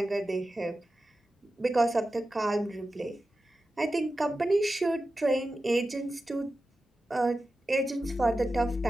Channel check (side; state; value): both; normal; correlation 0.93